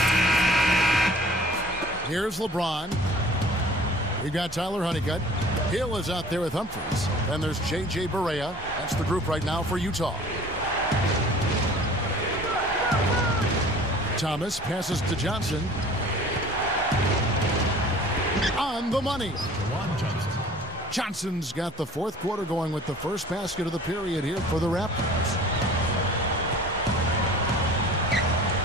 Here's LeBron. We've got Tyler Honeycutt. Hill is out there with Humphries. Then there's J.J. Barea. That's the group right now for Utah. Thomas passes to Johnson. On the money. Johnson's got the 4th quarter going with the first basket of the period here for the Raptors.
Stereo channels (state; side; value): normal; both; correlation 0.47